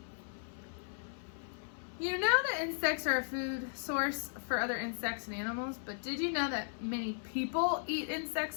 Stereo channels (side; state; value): right; silent; 54 dB below the other